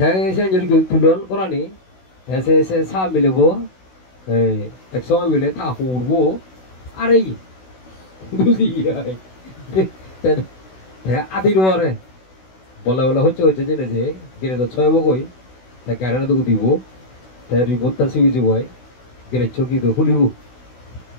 jadi gitu tulun koran nih saya sah milih ekso milih tahu bu are বুঝি আদি নোয়ারে বলা হচ্ছে জেনে যে গেলে তো ছয় মগই গাড়ি তো দিব তাই রিপোর্টটা সিবি যাব গেলে চকি তো খুলিব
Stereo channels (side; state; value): right; late; 16 ms